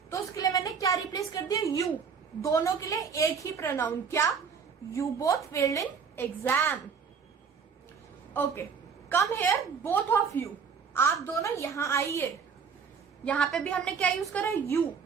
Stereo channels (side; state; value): left; quieter; 6.1 dB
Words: तो उसके लिए मैंने क्या रिप्लेस कर दिया, यू। दोनों के लिए एक ही प्रोनाउन, क्या, you both failed in exam. Okay, come here both of you, आप दोनों यहां आइए। यहां पे भी हमने क्या यूज करा, यू,